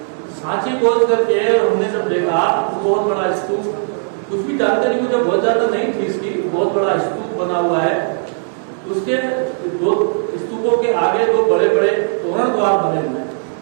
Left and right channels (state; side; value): silent; left; digital silence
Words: सांची पहुंच करके हमने जब देखा तो बहुत बड़ा स्तूप, कुछ भी जानकारी मुझे बहुत ज्यादा नहीं थी इसकी, बहुत बड़ा स्तूप बना हुआ है। उसके दो स्तूपों के आगे दो बड़े बड़े तोरण द्वार बने हुए हैं।